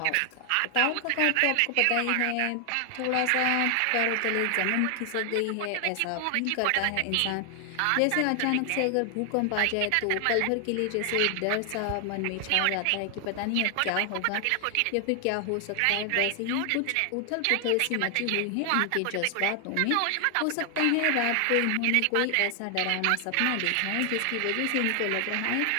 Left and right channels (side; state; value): both; different; correlation 0.00